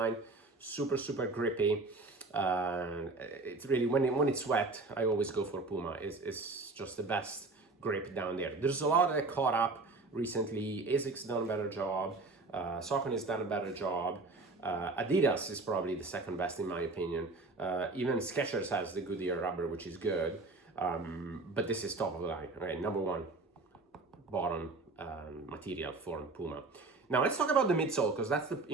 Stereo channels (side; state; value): left; quieter; 3.5 dB